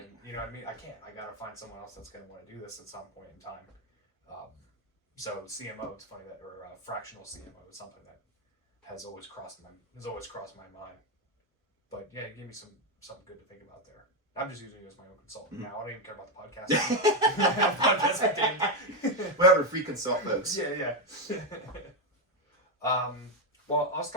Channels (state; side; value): normal; both; correlation 0.07